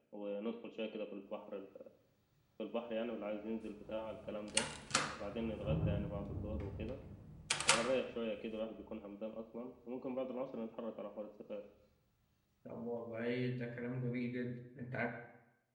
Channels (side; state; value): both; identical; correlation 1.00